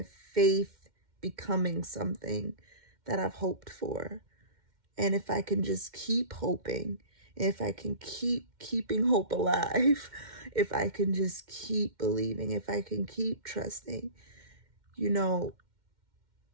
faith becoming something that I've hoped for. And if I can just keep hoping, if I can keep keeping hope alive, if I can just keep believing, if I can keep trusting,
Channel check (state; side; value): late; left; 2.1 ms